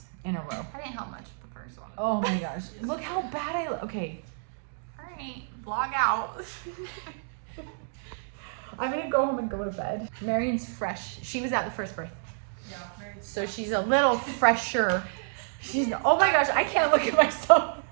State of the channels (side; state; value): left; silent; digital silence